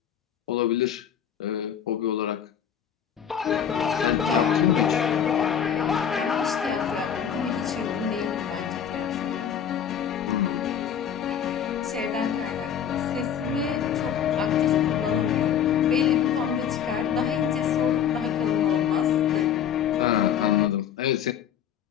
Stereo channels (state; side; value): quieter; right; 8.7 dB